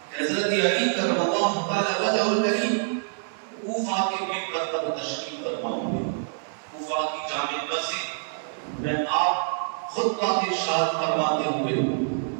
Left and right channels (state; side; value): silent; left; digital silence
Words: کہ حضرت علی کرم اللہ تعالی وجہ الکریم کوفہ کے منبر پر تشریف فرما ہوئے، کوفہ کی جامع مسجد میں آپ خطبہ ارشاد فرماتے ہوئے